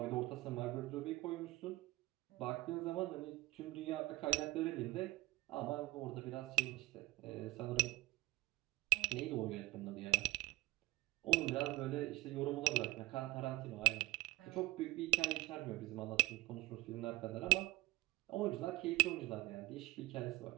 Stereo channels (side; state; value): left; quieter; 20.4 dB